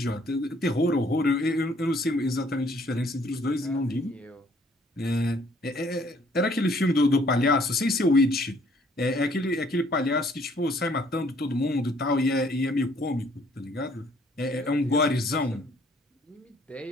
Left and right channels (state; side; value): normal; both; correlation 0.62